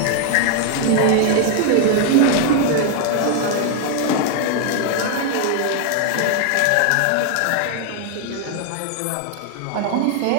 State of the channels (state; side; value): different; both; correlation 0.00